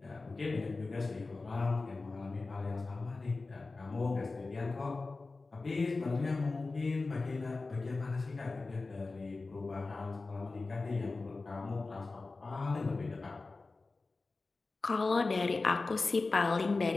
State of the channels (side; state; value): right; quieter; 3.6 dB